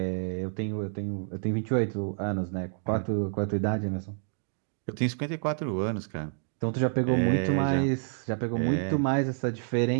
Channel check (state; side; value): silent; left; 59 dB below the other